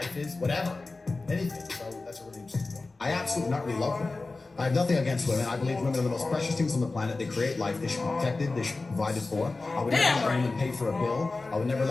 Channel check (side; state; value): right; quieter; 3.5 dB